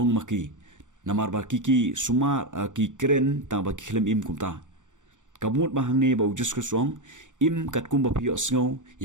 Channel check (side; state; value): left; late; 0.86 ms